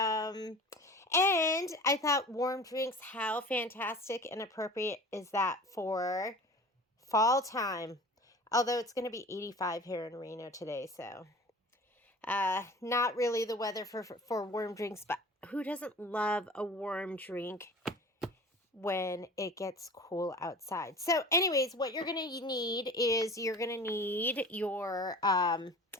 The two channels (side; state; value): both; normal; correlation 0.40